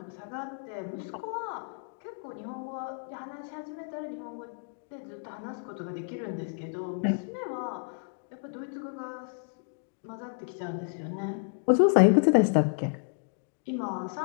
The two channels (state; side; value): silent; right; 57 dB below the other